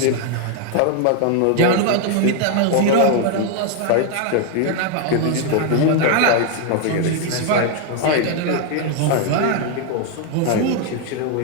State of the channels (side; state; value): both; different; correlation 0.00